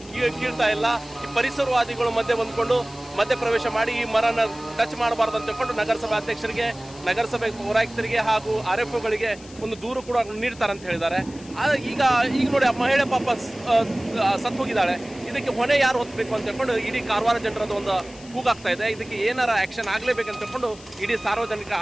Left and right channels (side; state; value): left; noise; hiss, 21 dB below the sound